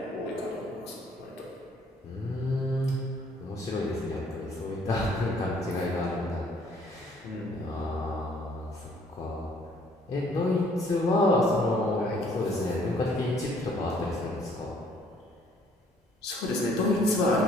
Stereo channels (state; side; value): normal; both; correlation 0.61